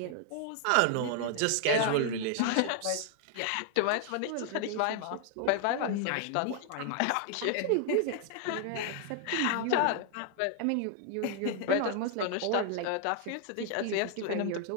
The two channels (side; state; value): both; different; correlation 0.00